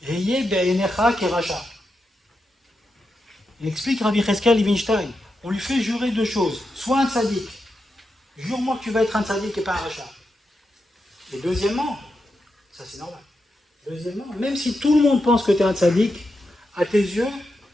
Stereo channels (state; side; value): normal; both; correlation 0.87